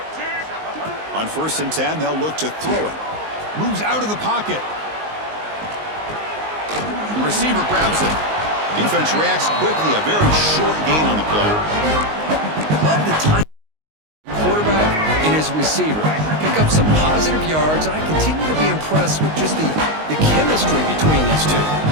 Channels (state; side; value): late; left; 19 ms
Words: On 1st and 10, they'll look to throw it. Moves out of the pocket. The receiver grabs it. Defense reacts quickly. A very short gain on the play. Love the time. Quarterback and his receiver pick up some positive yards, and I continue to be impressed with just the chemistry between these two.